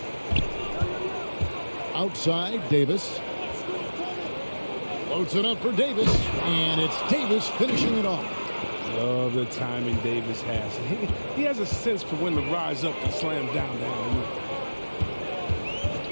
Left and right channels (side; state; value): both; inverted; correlation -1.00